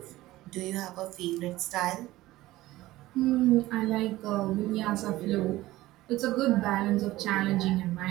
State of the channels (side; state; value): left; quieter; 17.1 dB